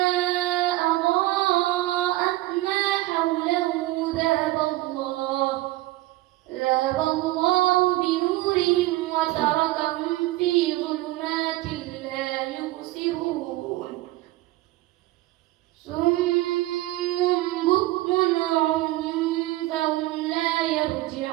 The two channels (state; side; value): quieter; left; 18.1 dB